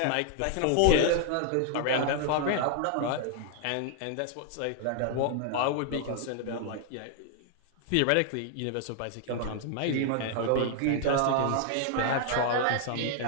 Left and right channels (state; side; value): different; both; correlation 0.00